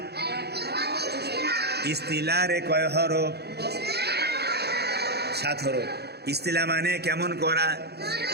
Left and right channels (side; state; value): left; late; 0.48 ms